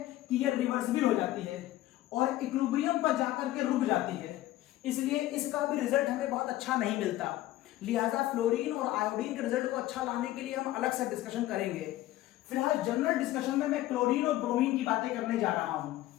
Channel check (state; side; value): quieter; right; 15.4 dB